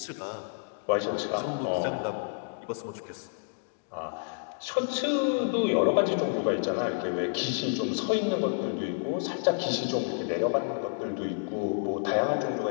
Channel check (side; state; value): right; silent; digital silence